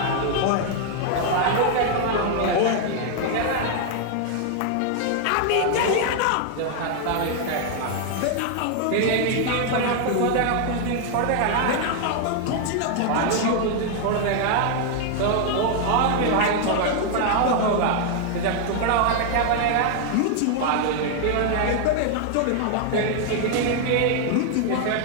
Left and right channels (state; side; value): different; both; correlation 0.00